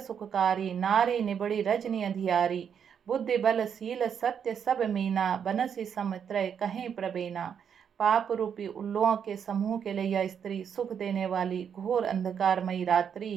नारी निबड़ी रजनी अंधियारी। बुद्धि बल शील सत्य सब मीना, बनसी समत्रय कहीं प्रबेना। पाप रूपी उल्लुओं के समूह के लिए यह स्त्री सुख देने वाली घोर अंधकारमयी रात्रि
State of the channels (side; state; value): left; quieter; 7.7 dB